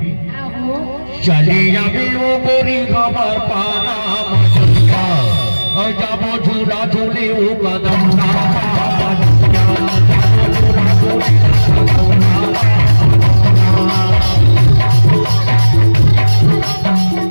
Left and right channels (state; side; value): inverted; both; correlation -1.00